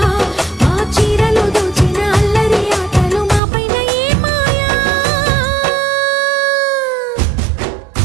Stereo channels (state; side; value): drops out; left; at 3.4 s